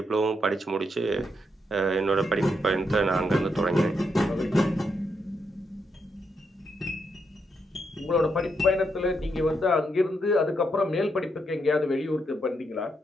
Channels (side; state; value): both; normal; correlation 0.79